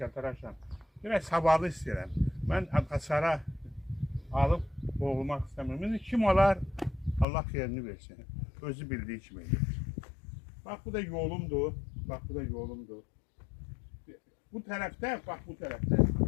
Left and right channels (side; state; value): right; drops out; at 7.2 s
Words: Biraz savadı istəyirəm. Mən hasara alıb boğulmaq istəmirəm. İndi kim olar? Allah xeyrini versin. Özü bildiyi kimi edir. Bax, bu da yolumdur. Bax, bu da yolumdur. Bu tərəfdə, bax, bu tərəfdə.